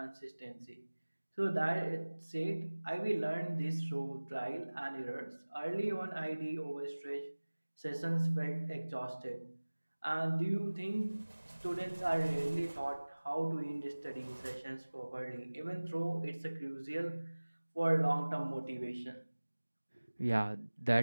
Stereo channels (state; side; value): inverted; both; correlation -1.00